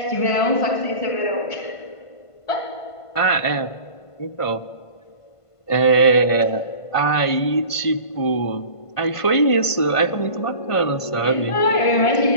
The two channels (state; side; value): late; right; 1.5 ms